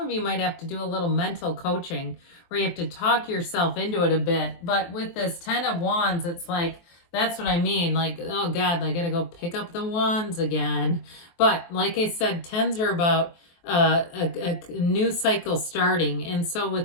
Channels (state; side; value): late; right; 23 ms